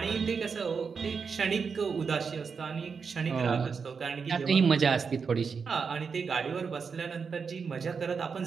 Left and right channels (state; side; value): quieter; left; 5.6 dB